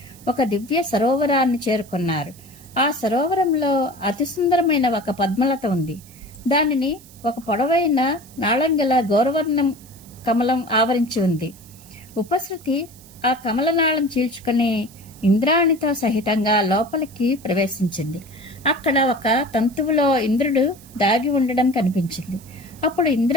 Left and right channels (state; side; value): noise; right; hiss, 23 dB below the sound